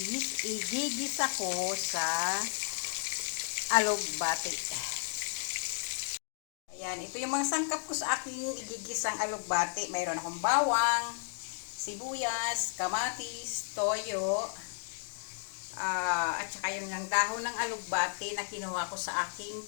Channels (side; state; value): right; silent; digital silence